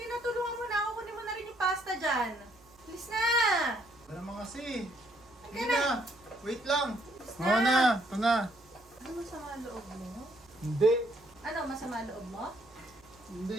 na, tulungan mo na ako. Kunin mo na rin yung pasta dyan. Bilis na! Wala naman kasi. Halika Hindi na. na. Wait lang. Bilis Oo na. Ito na. Ano masama loob mo? Hindi. Ano masama loob mo?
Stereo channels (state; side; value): noise; right; hum, 29 dB below the sound